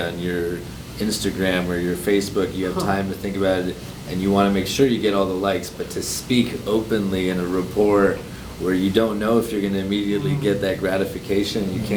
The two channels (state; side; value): identical; both; correlation 1.00